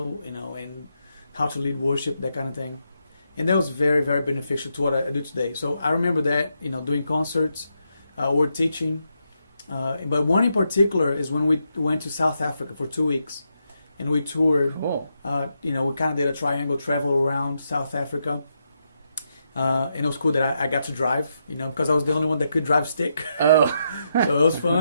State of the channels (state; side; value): inverted; both; correlation -0.82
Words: and how to lead worship, that kind of thing. And that was very, very beneficial to what I do today. So I remember that, doing concerts, or teaching. But one in particular is when we went to South Africa for 2 weeks, and we toured. Cool. We kind of did a triangle travel around South Africa. And it was cool that I got to drive, because I was the only one that could drive stick. Oh. So it was